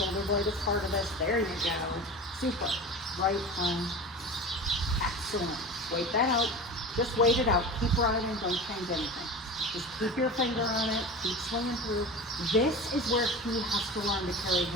blade is part of this. There you go. Super. Right arm. Excellent. Wait that out. Just wait it out. Keep riding. Don't change anything. Just keep your finger on it, keep swinging through. This is where he has to learn to carry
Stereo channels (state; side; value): normal; both; correlation 0.32